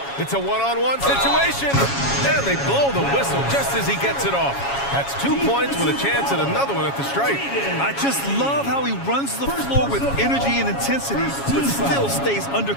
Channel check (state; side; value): late; right; 7.2 ms